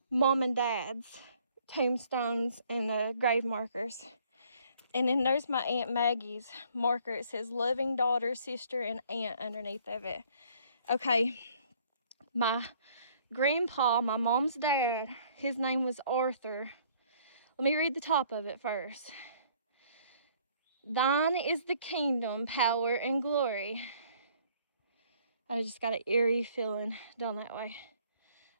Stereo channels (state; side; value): inverted; both; correlation -0.60